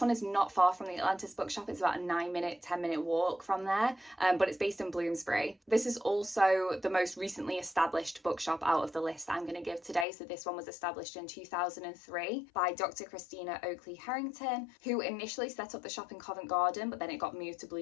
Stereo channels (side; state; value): right; drops out; at 10.1 s